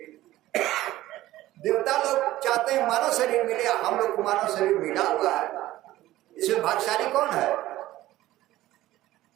देवता लोग चाहते हैं मानव शरीर मिले, हम लोग को मानव शरीर मिला हुआ है। इसमें भाग्यशाली कौन है?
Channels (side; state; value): left; quieter; 15.7 dB